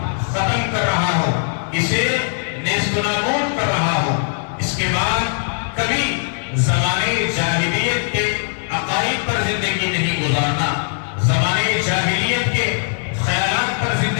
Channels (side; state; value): right; silent; digital silence